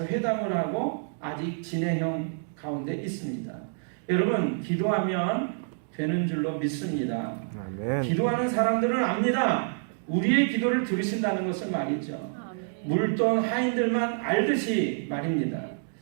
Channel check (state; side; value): silent; left; digital silence